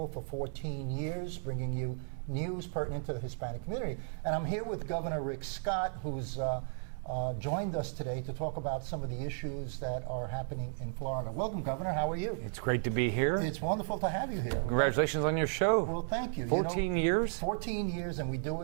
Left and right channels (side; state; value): left; silent; digital silence